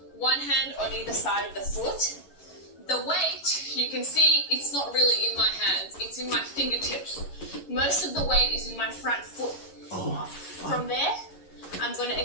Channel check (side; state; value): right; late; 11 ms